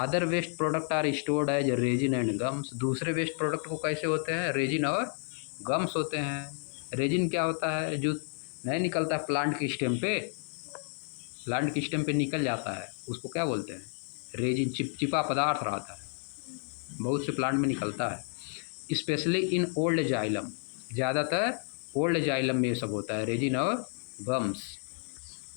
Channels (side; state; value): right; silent; 57 dB below the other